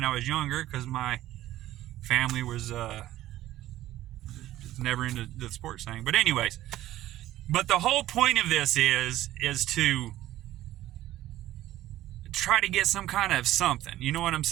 I was younger because my family was never into the sports thing. But anyways, but the whole point of this is to try to get some kind of something. You know what I'm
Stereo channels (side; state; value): left; quieter; 14.5 dB